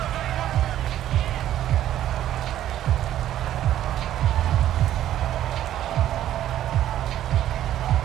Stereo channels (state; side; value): quieter; left; 12.1 dB